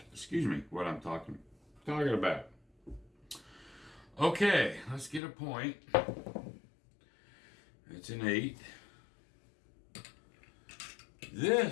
what I'm talking about. Okay, let's get a point. It's an 8.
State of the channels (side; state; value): right; drops out; at 5.2 s